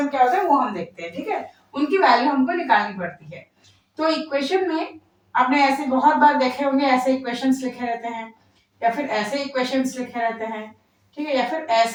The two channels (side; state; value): both; identical; correlation 1.00